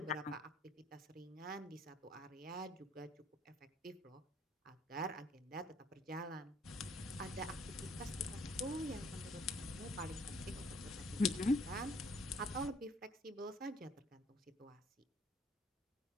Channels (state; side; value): normal; both; correlation 0.62